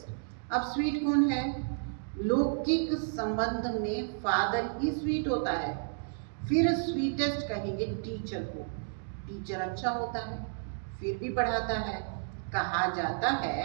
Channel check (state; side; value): silent; left; digital silence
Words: अब स्वीट कौन है? लौकिक संबंध में फादर ही स्वीट होता है। फिर स्वीटेस्ट कहेंगे टीचर को। टीचर अच्छा होता है, फिर भी पढ़ाता है। कहा जाता